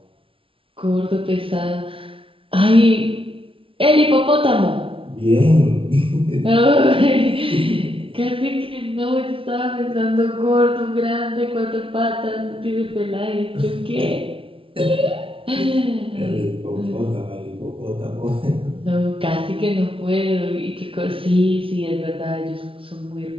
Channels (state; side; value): late; left; 0.26 ms